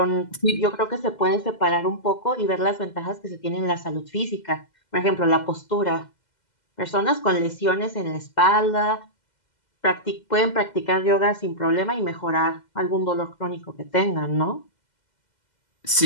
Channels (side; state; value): right; late; 2.0 ms